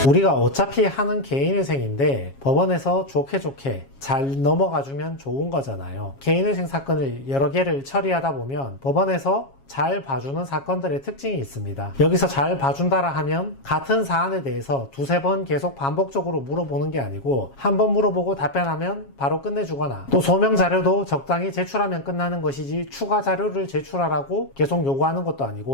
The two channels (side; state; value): right; late; 7.3 ms